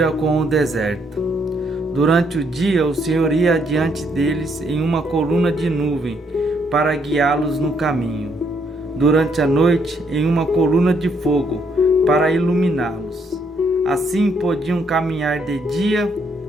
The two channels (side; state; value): both; normal; correlation 0.72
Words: com o deserto. Durante o dia, o Senhor ia adiante deles em uma coluna de nuvem para guiá-los no caminho. Durante a noite, em uma coluna de fogo para iluminá-los. Assim podiam caminhar de dia